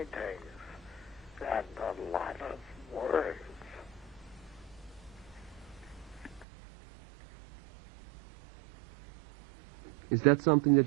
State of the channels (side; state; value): left; drops out; at 6.5 s